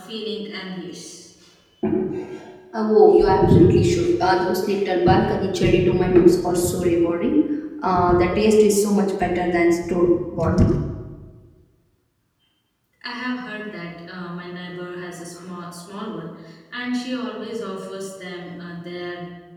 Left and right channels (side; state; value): both; identical; correlation 1.00